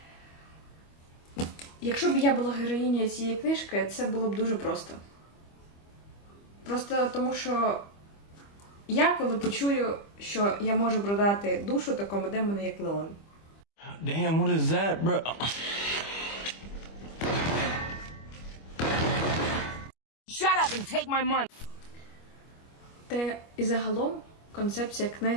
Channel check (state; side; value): late; right; 25 ms